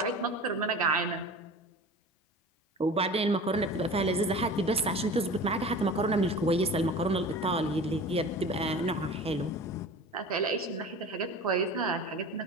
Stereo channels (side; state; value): both; normal; correlation 0.38